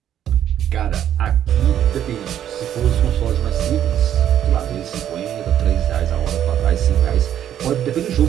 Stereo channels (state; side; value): quieter; left; 10.5 dB